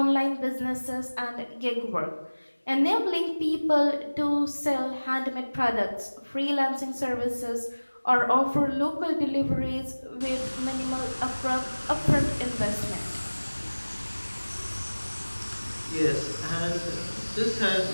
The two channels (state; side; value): inverted; both; correlation -1.00